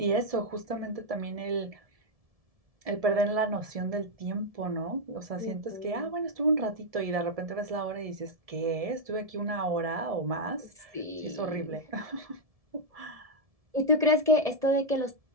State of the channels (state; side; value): late; left; 1.7 ms